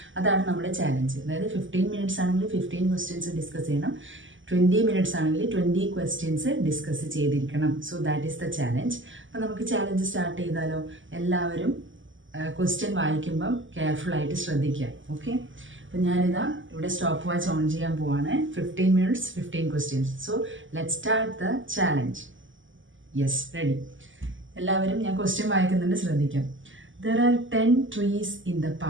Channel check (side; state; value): left; late; 0.56 ms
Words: അതാണ് നമ്മുടെ ചാലഞ്ച്. അതായത് 15 മിനിറ്റ്സ് ആണെങ്കിൽ 15 ക്വസ്റ്റ്യൻസ് ഡിസ്കസ് ചെയ്യണം. 20 മിനിറ്റ്സ് ആണെങ്കിൽ 20 ക്വസ്റ്റ്യൻസ് ഡിസ്കസ് ചെയ്തിരിക്കണം. So that is the challenge. അപ്പം നമുക്ക് ചാലഞ്ച് സ്റ്റാർട്ട് ചെയ്താലോ? എല്ലാവരും ക്വസ്റ്റ്യൻ വായിക്കുമ്പം കെയർഫുള്ളായിട്ട് ശ്രദ്ധിക്കുക. ഓക്കെ, അപ്പം ഞാനിതാ ഇവിടെ സ്റ്റോപ്പ് വാച്ച് ഓൺ ചെയ്യാൻ പോവാണ്. 15 minutes 15 questions. So let start the challenge. Yes, ready. എല്ലാവരും ഞാൻ ക്വസ്റ്റ്യൻ വായിക്കുന്നുണ്ട്, ശ്രദ്ധിക്കാം. There are 10 trees in the